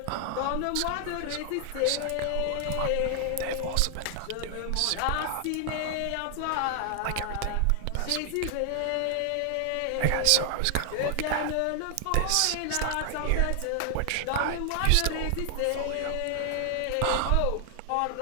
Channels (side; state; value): both; different; correlation 0.00